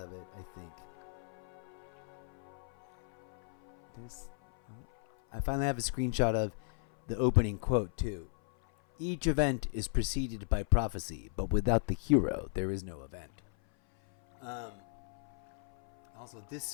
it, I think. I finally have a screenshot of the opening quote, too. Each event is preceded by prophecy, but without the hero, there is no event. Also, this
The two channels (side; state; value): right; silent; 54 dB below the other